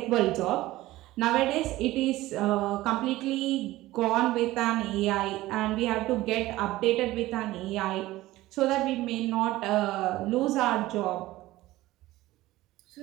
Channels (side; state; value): left; quieter; 17.1 dB